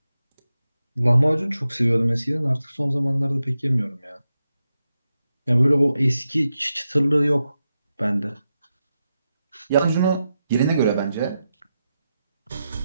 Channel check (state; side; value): inverted; both; correlation -0.89